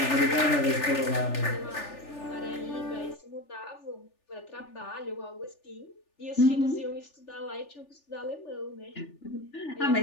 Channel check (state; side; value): late; right; 3.4 ms